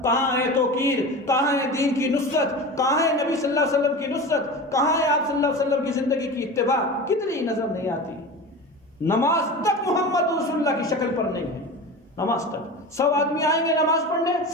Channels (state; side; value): normal; both; correlation 0.30